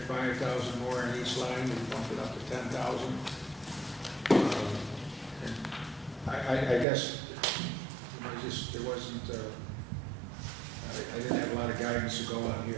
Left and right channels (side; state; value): left; drops out; at 6.9 s